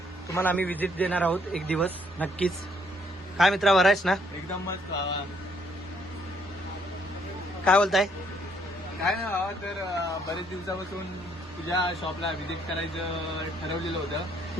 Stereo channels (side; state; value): both; normal; correlation 0.68